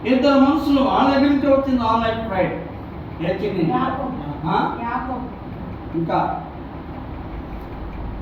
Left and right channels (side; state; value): both; identical; correlation 1.00